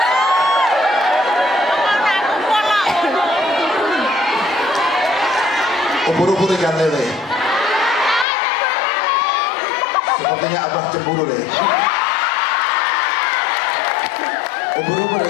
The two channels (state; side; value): drops out; right; at 8.2 s